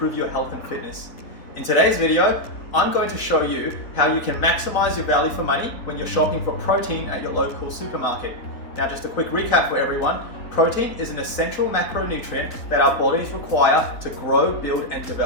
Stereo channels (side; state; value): right; late; 3.9 ms